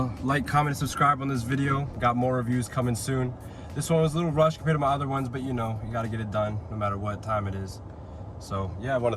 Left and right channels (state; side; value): identical; both; correlation 1.00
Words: like, comment, and subscribe on this video. Got more reviews coming soon. This one was a little rushed compared to my other ones, but you know, you gotta get it done no matter what time it is. So yeah, I want